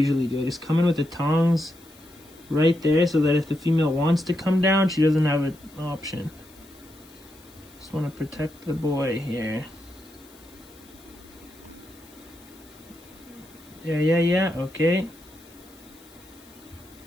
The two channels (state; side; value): noise; left; hiss, 25 dB below the sound